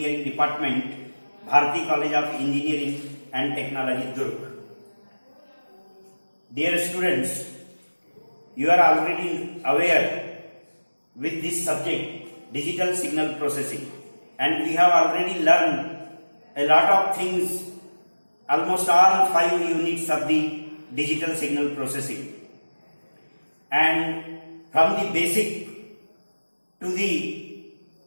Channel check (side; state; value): both; inverted; correlation -1.00